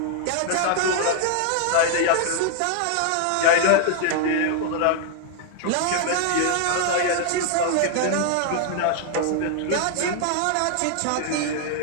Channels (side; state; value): both; different; correlation 0.00